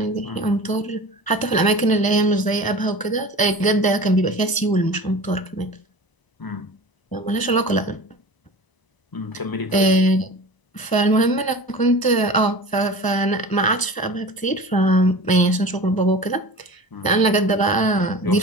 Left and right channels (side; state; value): right; late; 1.0 ms